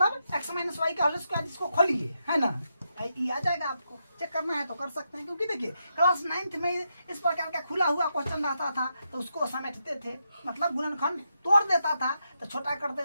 x माइनस वाई का होल स्क्वायर इसको खोलिए, है ना, ये आ जाएगा। आपको चेक करना है तो कर सकते हैं, क्योंकि देखिए क्लास 9th में इस प्रकार का खुला हुआ क्वेश्चन रहता था तो उसको समेटते थे, मतलब गुणनखंड तोड़ देता था तो छोटा कर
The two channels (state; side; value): inverted; both; correlation -0.83